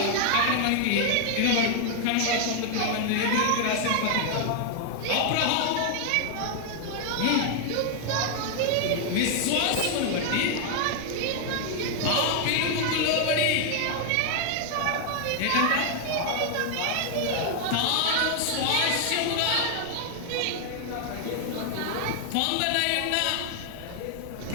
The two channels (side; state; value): both; different; correlation 0.00